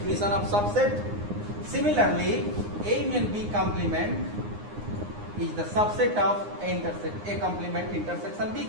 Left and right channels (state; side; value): late; left; 9.7 ms